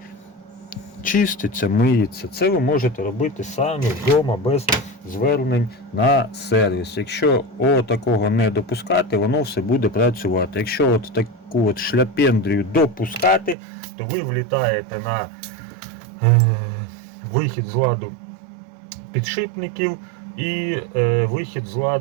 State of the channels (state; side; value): drops out; left; at 13.6 s